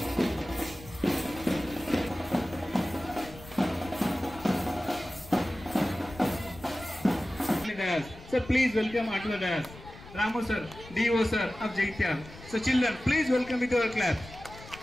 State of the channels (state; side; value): noise; left; rumble, 18 dB below the sound